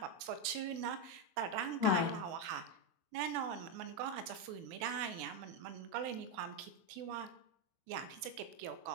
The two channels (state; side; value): late; left; 24 ms